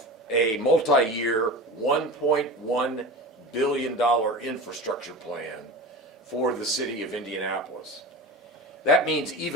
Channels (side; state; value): both; normal; correlation 0.30